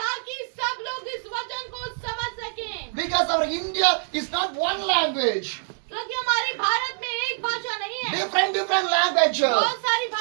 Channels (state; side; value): silent; left; digital silence